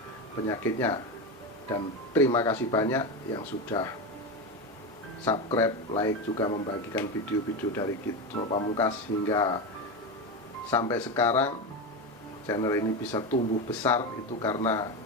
penyakitnya. Dan terima kasih banyak yang sudah subscribe, like, juga membagikan video-video dari Truno Pamungkas hingga sampai sekarang. Channel ini bisa tumbuh besar itu karena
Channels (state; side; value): normal; both; correlation 0.17